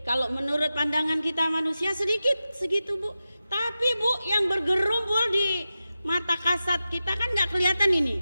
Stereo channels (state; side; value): inverted; both; correlation -0.93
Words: Kalau menurut pandangan kita manusia sedikit segitu Bu. Tapi Bu yang bergerumpul di mata kasat kita kan nggak kelihatan ini.